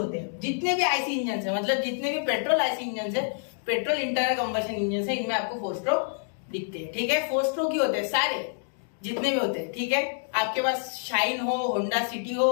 हैं। जितने भी आईसी इंजन है, मतलब जितने भी पेट्रोल आईसी इंजन है, पेट्रोल इंटरनल कंबशन इंजन है, इनमें आपको 4 स्ट्रोक दिखते हैं। ठीक है, 4 स्ट्रोक ही होते हैं सारे जितने भी होते हैं। ठीक है, आपके पास शाइन हो, होंडा सिटी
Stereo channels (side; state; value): right; silent; digital silence